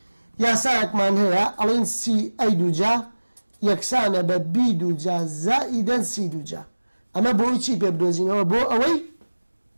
یاسایەکمان هەیە ئەڵێن سی ئەی دووجا یەکسانە بە بی دووجا زائیدەن سی دووجا ئەمە بۆی چی پێ بدۆزینەوە بۆ ئەوەی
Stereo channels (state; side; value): inverted; both; correlation -1.00